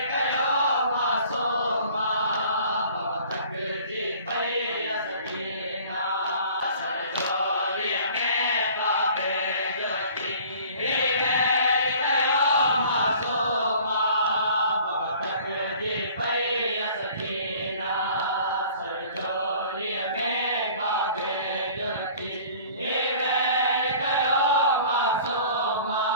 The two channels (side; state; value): both; inverted; correlation -0.49